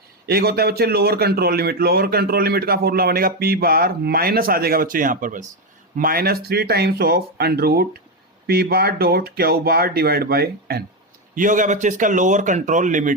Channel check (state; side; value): normal; both; correlation 0.08